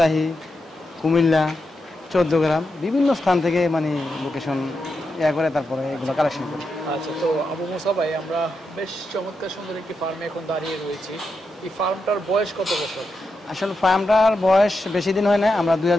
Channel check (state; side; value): normal; both; correlation 0.86